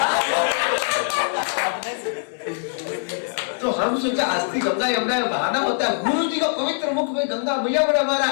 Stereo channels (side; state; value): right; silent; digital silence